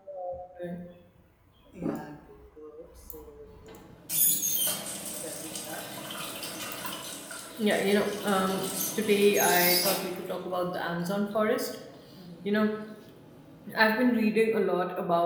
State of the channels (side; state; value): both; identical; correlation 1.00